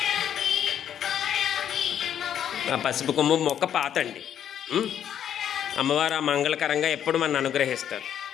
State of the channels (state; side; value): quieter; right; 9.6 dB